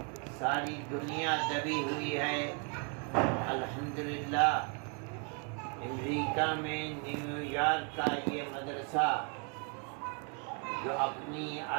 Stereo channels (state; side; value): quieter; left; 37.4 dB